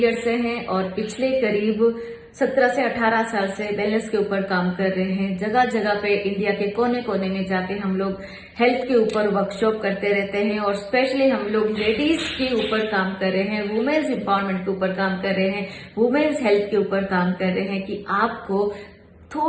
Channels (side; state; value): both; identical; correlation 1.00